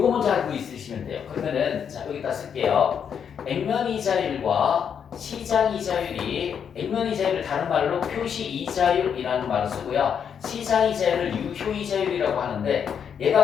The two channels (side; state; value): right; quieter; 7.6 dB